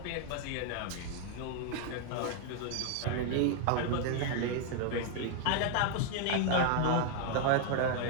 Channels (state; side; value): different; both; correlation 0.00